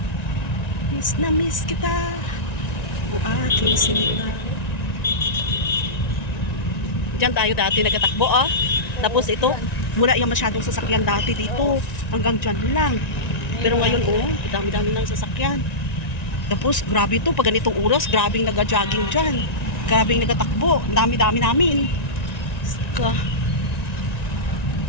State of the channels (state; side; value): late; right; 1.9 ms